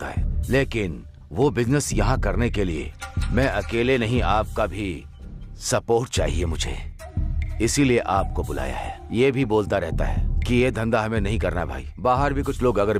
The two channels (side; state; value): both; identical; correlation 1.00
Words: है, लेकिन वो बिजनेस यहाँ करने के लिए मैं अकेले नहीं, आपका भी सपोर्ट चाहिए मुझे। इसीलिए आपको बुलाया है। ये भी बोलता रहता है कि ये धंधा हमें नहीं करना भाई। बाहर भी कुछ लोग अगर